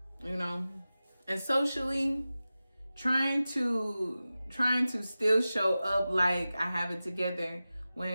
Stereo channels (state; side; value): inverted; both; correlation -0.95